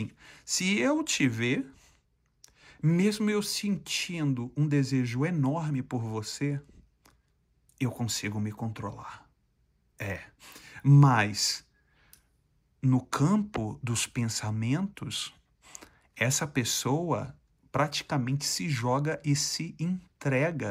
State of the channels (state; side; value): identical; both; correlation 1.00